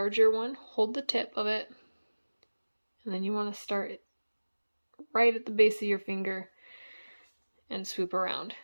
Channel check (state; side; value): inverted; both; correlation -1.00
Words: one, hold the tip of it, and then you want to start it right at the base of your finger and swoop around.